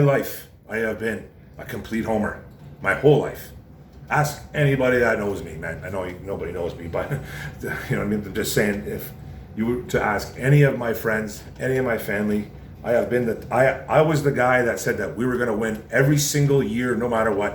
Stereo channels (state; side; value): identical; both; correlation 1.00